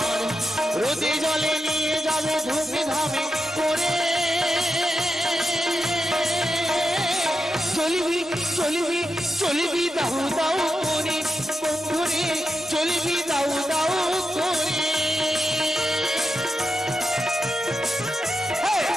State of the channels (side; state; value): both; normal; correlation 0.88